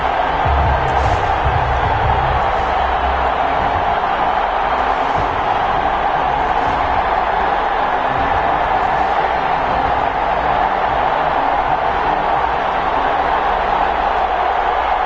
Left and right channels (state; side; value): identical; both; correlation 1.00